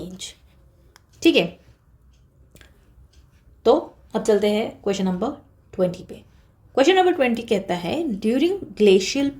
ठीक है, तो अब चलते हैं क्वेश्चन नंबर 20 पे। क्वेश्चन नंबर 20 कहता है during glacial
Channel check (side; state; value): both; identical; correlation 1.00